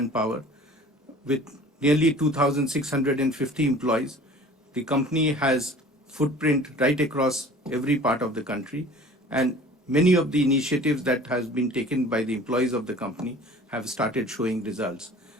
With nearly 2,650 employees, the company has footprint right across every part of the country, and many of the initiatives that has been taken by the employees of the company have started showing results.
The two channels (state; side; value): normal; both; correlation 0.46